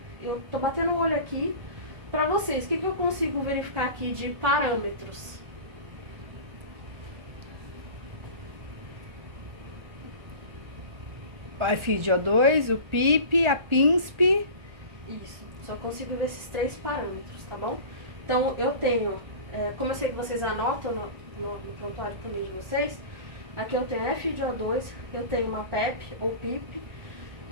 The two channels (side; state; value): left; late; 1.3 ms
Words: eu tô batendo o olho aqui para vocês. O que eu consigo verificar aqui de parâmetros? O FiO2, o PIP, a PINSP. Isso, só consigo ver esses 3 parâmetros, tá bom? Então, eu tenho, como eu sei que vocês anotam no prontuário também de vocês, aqui eu tenho FiO2, eu tenho uma PEP ou PIP